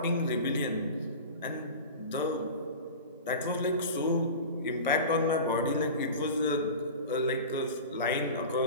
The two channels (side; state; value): both; inverted; correlation -0.32